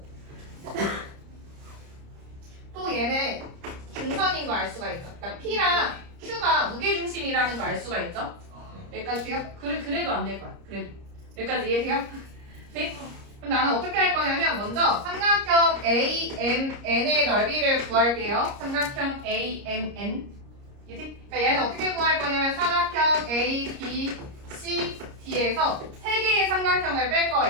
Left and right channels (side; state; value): left; late; 30 ms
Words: 얘는 중선인 거 알 수가 있죠. 그러니까 P랑 Q가 무게중심이라는 거 알 수가 있죠. 여기까지 돼요? 그래도 안 될 거야. 그래도 여기까지 이해돼요? 네? 그럼 나는 어떻게 할 거냐면 먼저 삼각형 AMN의 넓이를 구할게요. 삼각형 AMN. 이해돼? 그러니까 얘는 어떻게 구할 거냐면 삼각형 A, B, C, D에서 세 개의 삼각형을 뺄